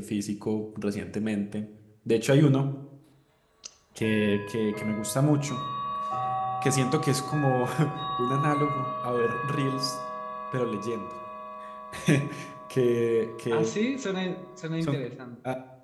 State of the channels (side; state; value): both; identical; correlation 1.00